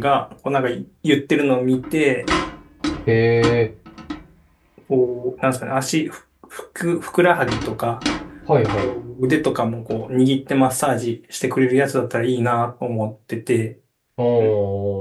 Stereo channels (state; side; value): identical; both; correlation 1.00